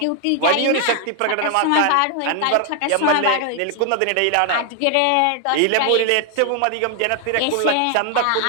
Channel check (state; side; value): different; both; correlation 0.00